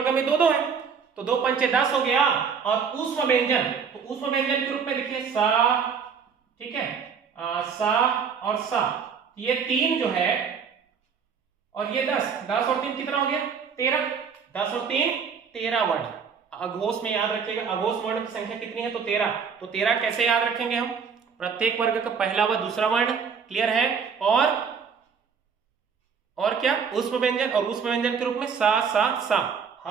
में दो दो है, तो दो पंचे 10 हो गया। और ऊष्म व्यंजन, तो ऊष्म व्यंजन के रूप में लिखिए सा। ठीक है, सा और सा, ये 3 जो है, और ये 10, 10 और 3 कितना हो गया? 13। 10 और 3 13 वर्ण। अघोष में याद रखिएगा, अघोष वर्ण की संख्या कितनी है? तो 13। तो 13 कैसे याद रखेंगे हम? प्रत्येक वर्ग का पहला व दूसरा वर्ण, क्लियर है, और क्या? ऊष्म व्यंजन, और ऊष्म व्यंजन के रूप में सा सा सा।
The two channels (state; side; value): quieter; left; 6.3 dB